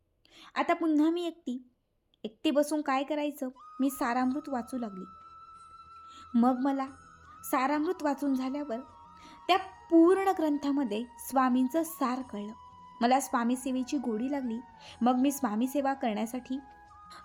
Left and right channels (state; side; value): identical; both; correlation 1.00